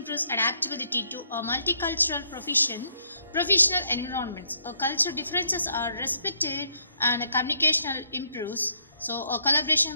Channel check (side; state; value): both; inverted; correlation -0.71